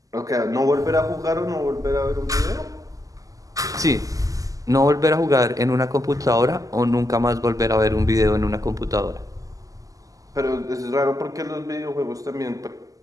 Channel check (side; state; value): left; late; 0.17 ms